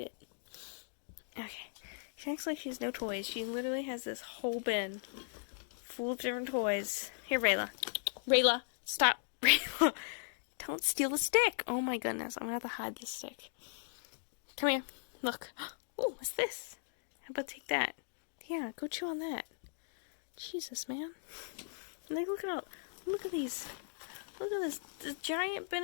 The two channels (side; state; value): right; silent; digital silence